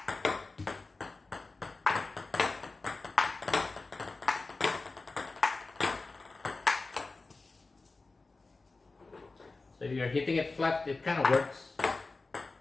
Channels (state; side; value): quieter; right; 3.6 dB